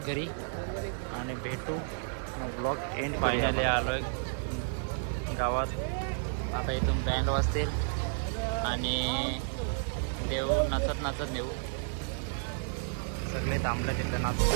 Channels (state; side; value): silent; left; digital silence